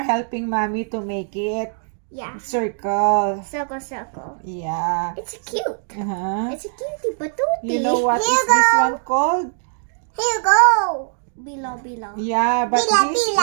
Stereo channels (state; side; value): silent; left; digital silence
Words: helping mommy to make it. Yeah. Circle. Circle, circle. Yeah. It's cute. It's a cutie patootie. You know what is this one called? Here you go. Bilo-bilo. Yeah, but this